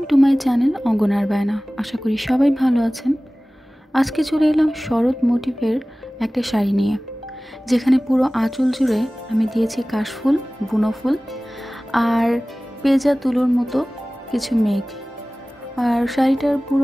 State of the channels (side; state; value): both; normal; correlation 0.98